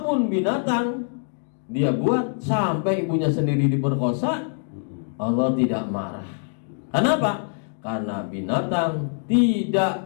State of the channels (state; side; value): silent; right; digital silence